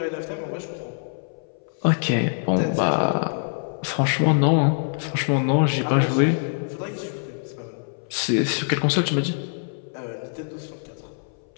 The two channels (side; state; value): right; silent; 59 dB below the other